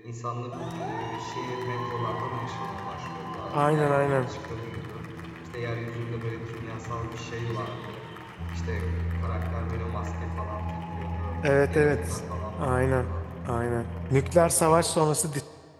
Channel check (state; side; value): identical; both; correlation 1.00